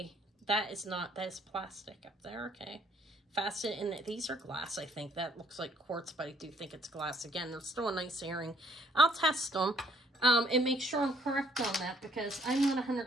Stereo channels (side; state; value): both; normal; correlation 0.63